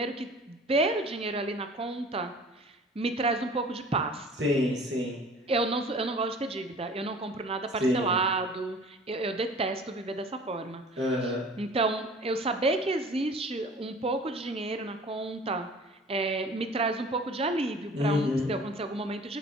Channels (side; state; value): both; normal; correlation 0.46